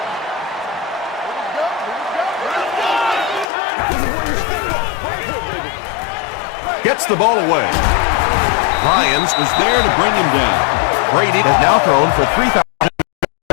Gets the ball away. Lyons was there to bring him down. Brady has now thrown for 3,000.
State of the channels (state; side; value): drops out; right; at 3.5 s